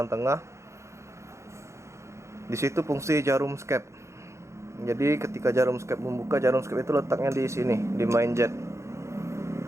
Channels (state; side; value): late; left; 0.14 ms